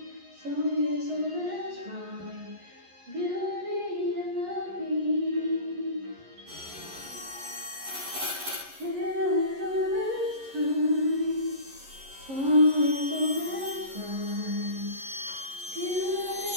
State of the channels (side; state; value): left; late; 11 ms